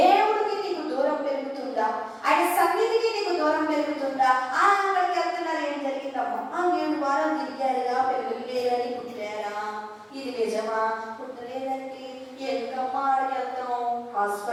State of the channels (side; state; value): both; identical; correlation 1.00